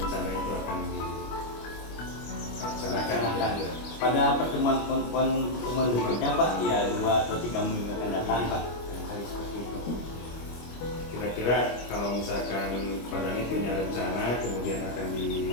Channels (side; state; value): right; late; 25 ms